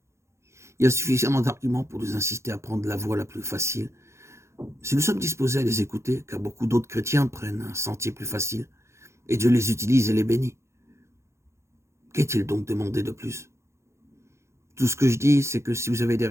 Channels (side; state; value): left; late; 0.13 ms